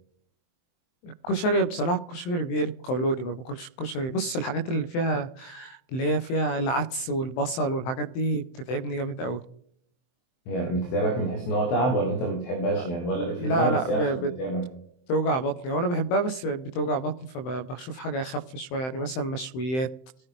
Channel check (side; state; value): right; late; 23 ms